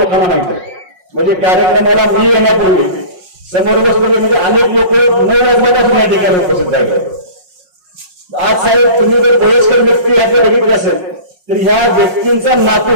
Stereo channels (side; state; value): left; late; 5.5 ms